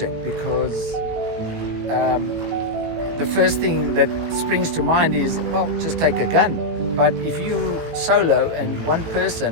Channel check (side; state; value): left; late; 18 ms